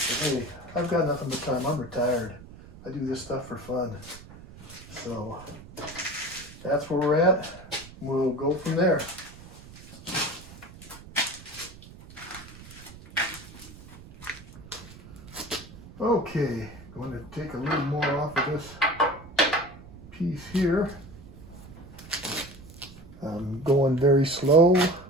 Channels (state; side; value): noise; right; rumble, 18 dB below the sound